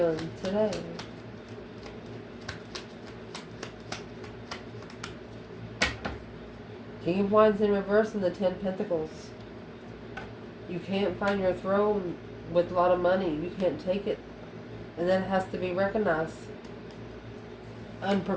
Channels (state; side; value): identical; both; correlation 1.00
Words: today? King of Wands in reverse and the 10 Pentacles. You can't find your throne with a lot of money. You can't take it. And that has to be recognized.